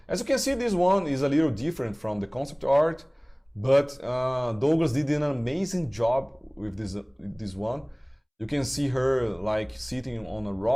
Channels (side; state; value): both; identical; correlation 1.00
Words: As you can see, this one is a little different from the concept art, but Douglas did an amazing job with this one. You can see her like sitting on a